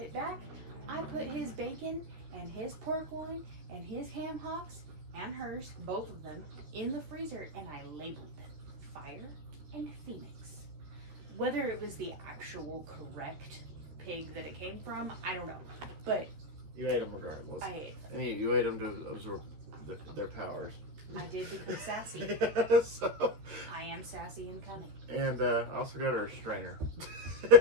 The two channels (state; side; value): late; left; 13 ms